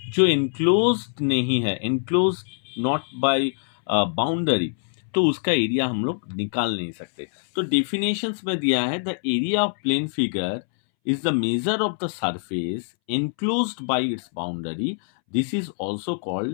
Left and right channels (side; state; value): right; silent; 63 dB below the other